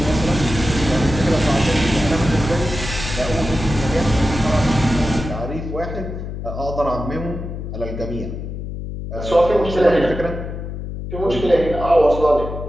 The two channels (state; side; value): noise; left; hum, 7 dB below the sound